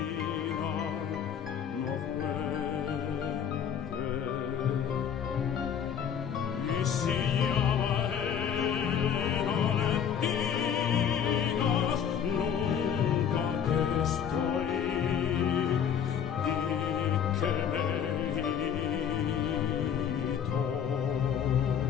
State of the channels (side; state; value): right; quieter; 8.2 dB